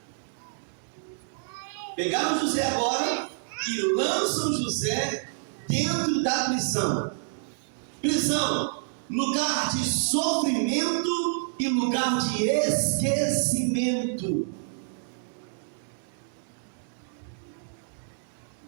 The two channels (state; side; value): silent; left; digital silence